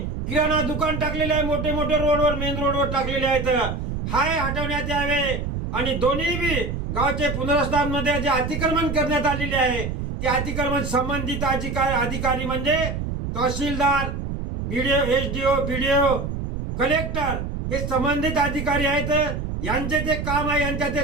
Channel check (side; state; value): right; noise; rumble, 4 dB below the sound